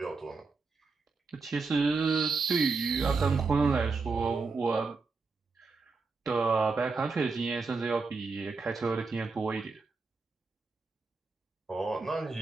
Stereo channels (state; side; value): quieter; left; 4.3 dB